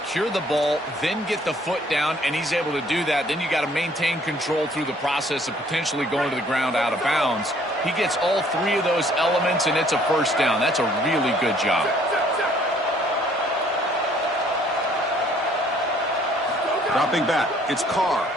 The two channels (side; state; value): both; normal; correlation 0.60